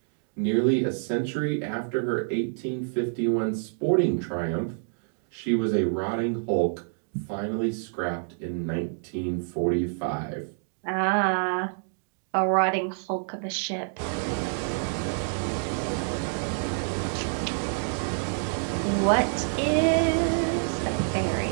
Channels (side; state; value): left; silent; digital silence